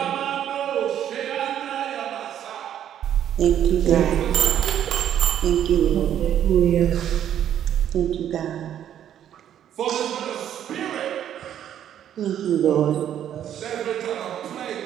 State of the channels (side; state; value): left; quieter; 10.3 dB